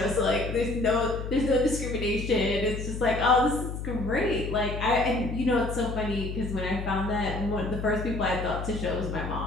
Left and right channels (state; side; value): noise; left; hum, 6 dB below the sound